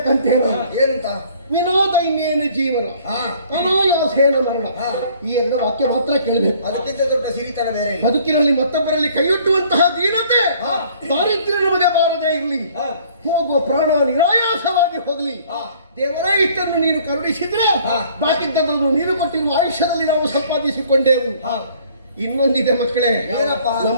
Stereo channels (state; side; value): inverted; both; correlation -0.57